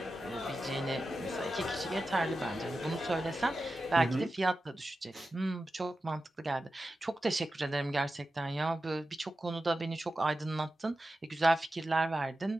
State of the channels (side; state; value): both; normal; correlation 0.92